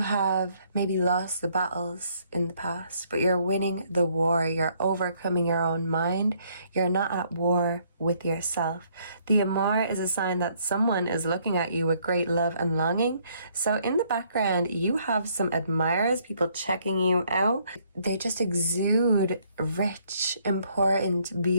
maybe lost the battles in the past, but you're winning the war. You're overcoming your own mind. You're not at war with yourself. The amour is a sign that someone is looking at you with great love and longing. So in the background, you have some admirers, people checking you out. They just exude rich, important,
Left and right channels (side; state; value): both; inverted; correlation -0.67